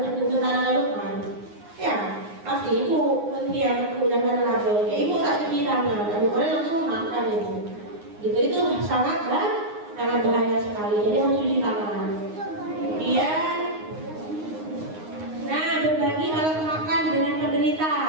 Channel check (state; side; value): late; left; 9.6 ms